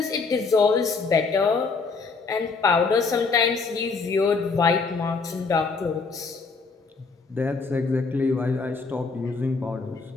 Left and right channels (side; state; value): right; quieter; 4.5 dB